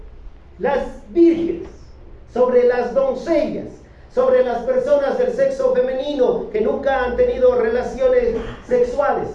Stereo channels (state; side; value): identical; both; correlation 1.00